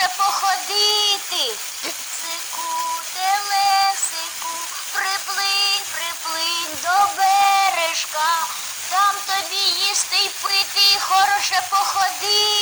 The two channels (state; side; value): identical; both; correlation 1.00